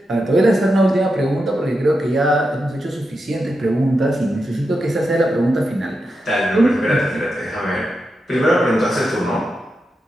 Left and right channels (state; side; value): normal; both; correlation 0.88